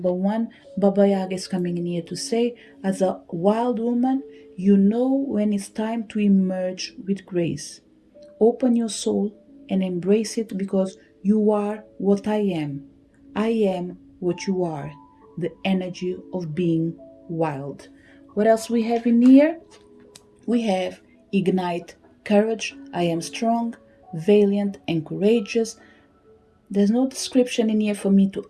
one, Baba Yaga is coming in here to say, as a wild woman, you know when it's time to emerge with grace. Open your soul and embrace it because you are what I am. I am what you are. The energy of being wild. What else we have in here? We have ignite courage. I am strong, valiant, and courageous. There's no description in here for me to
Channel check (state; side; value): identical; both; correlation 1.00